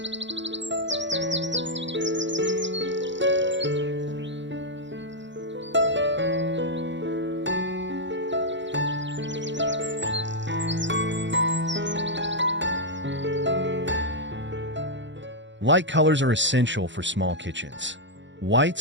Light colors are essential for small kitchens.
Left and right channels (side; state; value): left; late; 0.53 ms